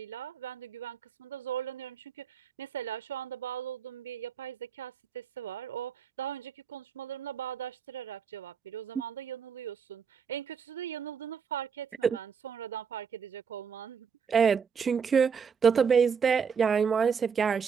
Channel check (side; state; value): left; quieter; 6.5 dB